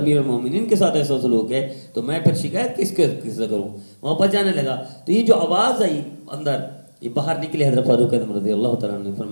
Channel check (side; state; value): both; inverted; correlation -1.00